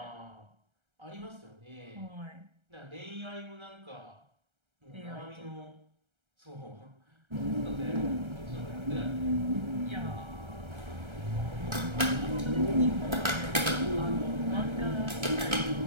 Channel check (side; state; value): left; late; 1.3 ms